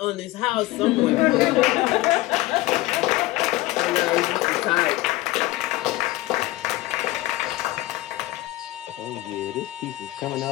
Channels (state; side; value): quieter; right; 18.5 dB